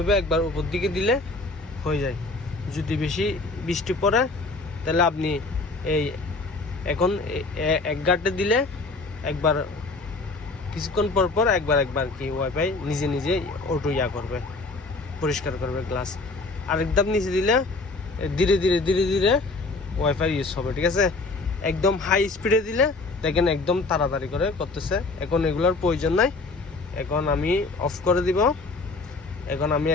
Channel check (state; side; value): quieter; right; 3.4 dB